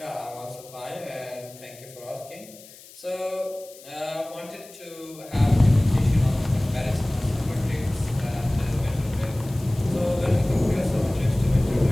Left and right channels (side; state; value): left; noise; hiss, 20 dB below the sound